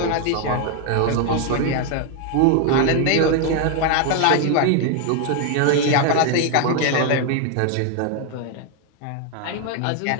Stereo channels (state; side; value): different; both; correlation 0.01